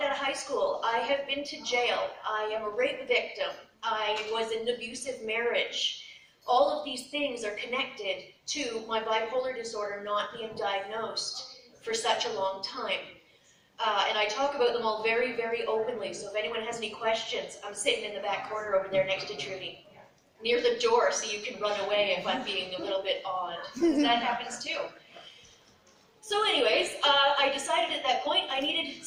out of high school. I have been to jail. I am a rape victim. I was in an abusive marriage. All of these things are connected to my bipolar disorder not being diagnosed for such a long time. And I talk about them all very, very openly, so if anyone has any questions, I'm sitting in the back corner over there next to Trudy, near the door, so you can run away if I'm being a little bit odd, because that happens too. So anyways, I decided at that point I needed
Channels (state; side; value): identical; both; correlation 1.00